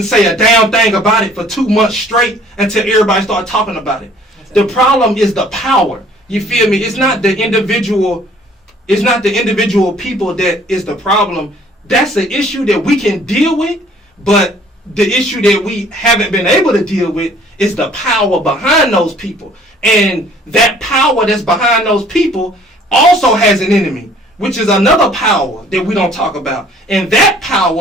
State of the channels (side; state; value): both; normal; correlation 0.56